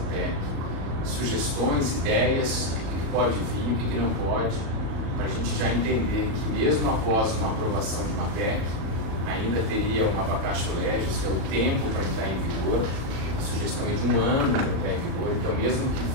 PEC, sugestões, ideias, o que pode vir, o que não pode, para a gente já entender que mesmo após uma aprovação de uma PEC, ainda teria uma vacatio legis, que é o tempo para entrar em vigor, a sugestão é de 1 ano para entrar em vigor, então mesmo que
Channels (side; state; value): left; late; 37 ms